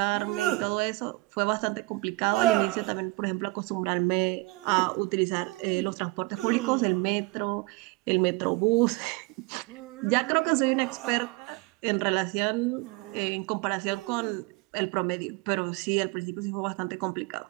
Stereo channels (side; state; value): left; quieter; 24.0 dB